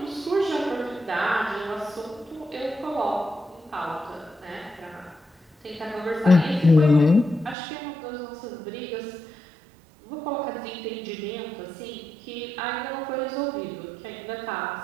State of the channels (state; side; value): drops out; left; at 7.6 s